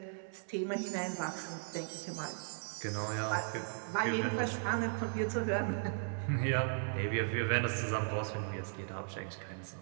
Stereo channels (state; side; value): silent; left; 53 dB below the other